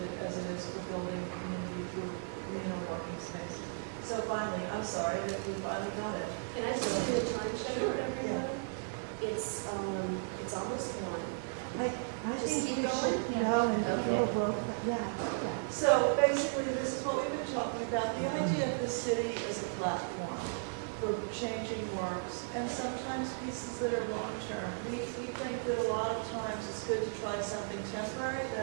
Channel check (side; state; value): left; silent; digital silence